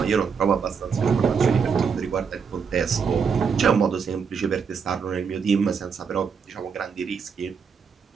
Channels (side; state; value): left; quieter; 6.1 dB